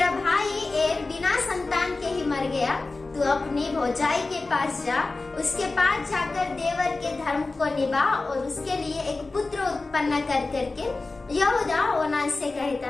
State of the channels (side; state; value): right; quieter; 3.5 dB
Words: भाई एर बिना संतान के ही मर गया, तू अपनी भौजाई के पास जा, उसके पास जाकर देवर के धर्म को निभा और उसके लिए एक पुत्र उत्पन्न कर करके यहूदा ओनान से कहता